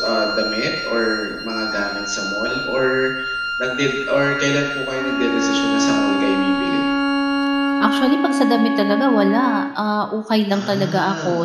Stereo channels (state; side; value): identical; both; correlation 1.00